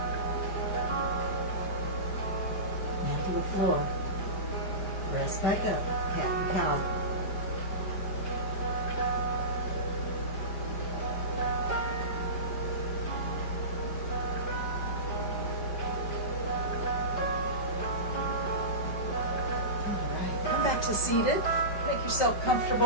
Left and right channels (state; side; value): late; right; 5.0 ms